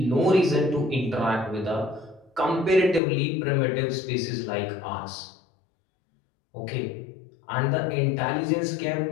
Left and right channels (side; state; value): right; drops out; at 3.0 s